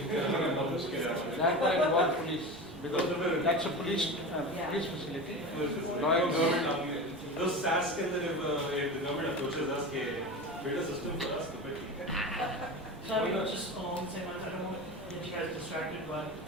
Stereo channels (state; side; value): noise; right; rumble, 21 dB below the sound